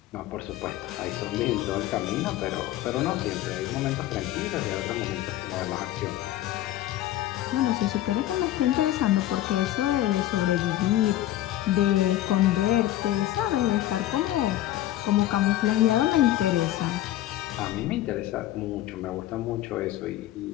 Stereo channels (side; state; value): right; quieter; 14.0 dB